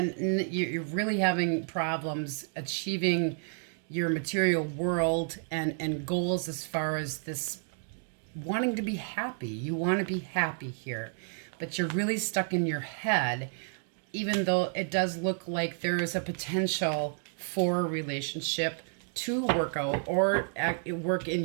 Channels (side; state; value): left; silent; 57 dB below the other